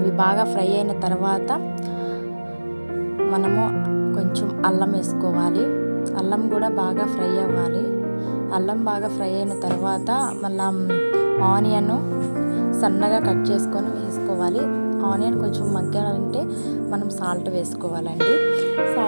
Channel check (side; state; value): both; inverted; correlation -1.00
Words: బాగా ఫ్రై అయిన తర్వాత మనము కొంచెం అల్లం వేసుకోవాలి. అల్లం కూడా బాగా ఫ్రై అవ్వాలి. అల్లం బాగా ఫ్రై అయిన తర్వాత మళ్ళీ ఆనియన్ సన్నగా కట్ చేసుకొని వేసుకోవాలి. ఆనియన్ కొంచెం మగ్గాలంటే మనం సాల్ట్ వేసుకోవాలండి.